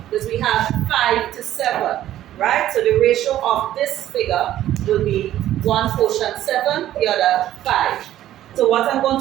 because we have 5 to 7, right? So the ratio of this figure will be one portion 7, the other 5. So what I'm going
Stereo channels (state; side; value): quieter; left; 12.9 dB